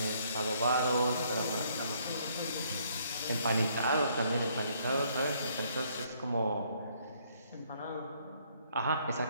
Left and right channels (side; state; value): both; inverted; correlation -0.67